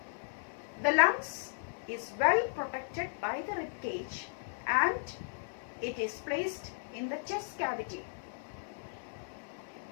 The lungs is well protected by the rib cage and it is placed in the chest cavity.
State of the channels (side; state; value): right; silent; 54 dB below the other